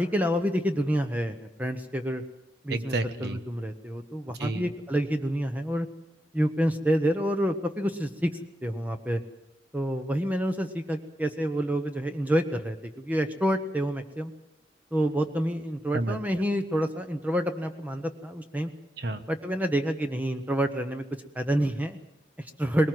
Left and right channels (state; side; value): normal; both; correlation 0.86